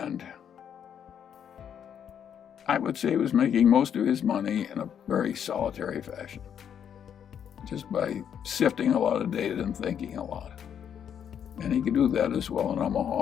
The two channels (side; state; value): right; quieter; 8.6 dB